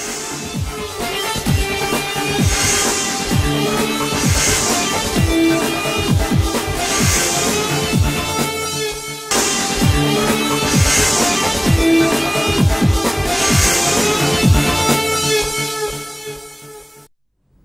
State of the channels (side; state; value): both; identical; correlation 1.00